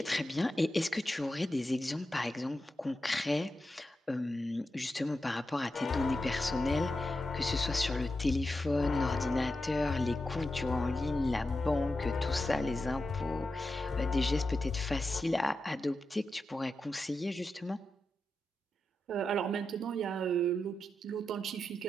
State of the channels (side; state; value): both; normal; correlation 0.89